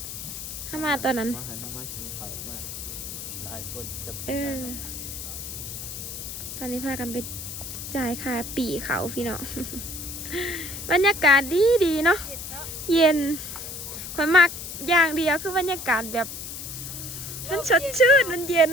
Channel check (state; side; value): noise; left; hiss, 8 dB below the sound